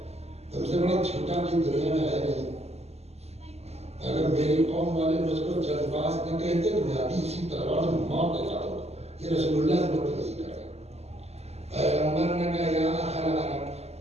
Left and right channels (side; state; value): left; late; 0.30 ms